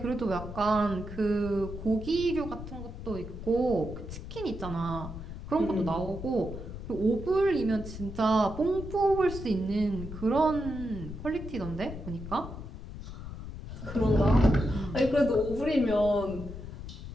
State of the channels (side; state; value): left; noise; rumble, 10 dB below the sound